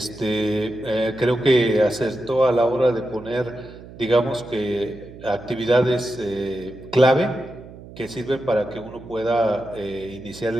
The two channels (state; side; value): noise; right; hum, 17 dB below the sound